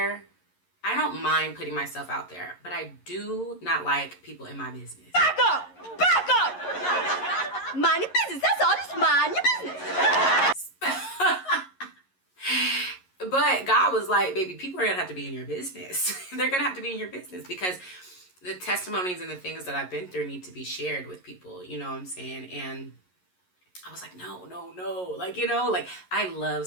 I don't mind putting myself out there, but I do not like people in my business. Back up! Back up! Mind your business. That's all. Just mind your business. But God was like, baby, people are gonna have to be in your business. They're gonna have to be in your business because the testimonies and the things that I've been through need to be shared with people, you know what I'm saying? And I was like, no, no, no. Like, you know, like I love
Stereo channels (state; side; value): late; right; 11 ms